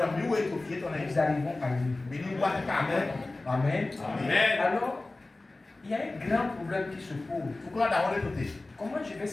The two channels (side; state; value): right; quieter; 3.1 dB